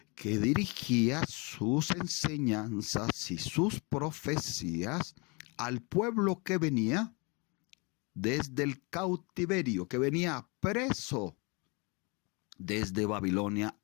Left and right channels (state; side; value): quieter; right; 30.1 dB